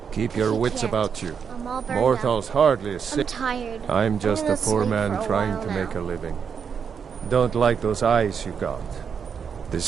Keep your wits about you. I'm all burned Mortals hardly sick. I'm tired. I'm just a gonna poor sleep man for a trying while to now. make a living. Don't like those eyes you got.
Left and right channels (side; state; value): left; quieter; 6.8 dB